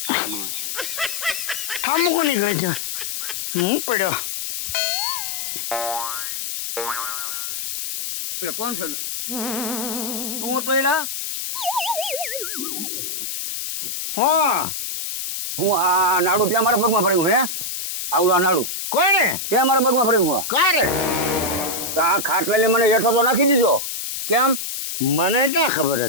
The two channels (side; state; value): left; noise; hiss, 4 dB below the sound